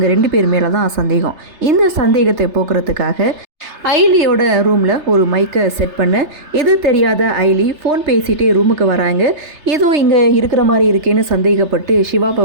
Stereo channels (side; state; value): left; late; 3.3 ms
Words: 2 பேர் மேலே தான் சந்தேகம். இந்த சந்தேகத்தை போக்குறதுக்காக ஐலியோட ரூமில் ஒரு மைக்கை செட் பண்ண எது தெரியாத ஐலி ஃபோன் பேசிகிட்டே ரூமுக்கு வராங்க. ஏதோ இங்கே இருக்கிற மாதிரி இருக்கேன்னு சந்தேகப்பட்டு சிவாவை